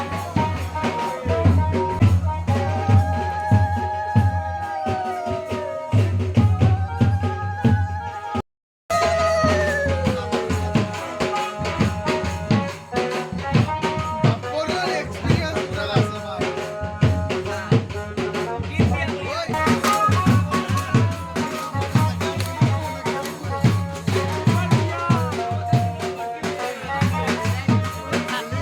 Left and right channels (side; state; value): both; identical; correlation 1.00